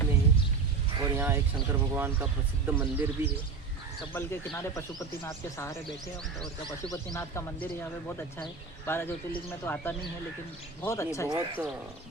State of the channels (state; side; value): quieter; left; 4.8 dB